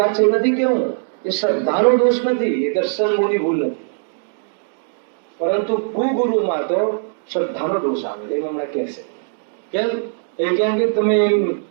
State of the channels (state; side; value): silent; left; 66 dB below the other